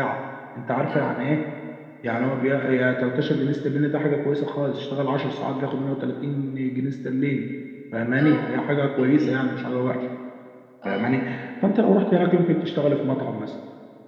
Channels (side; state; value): both; identical; correlation 1.00